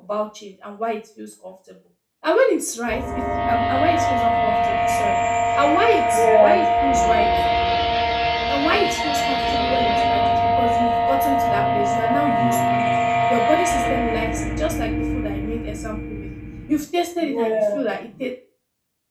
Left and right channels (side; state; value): both; identical; correlation 1.00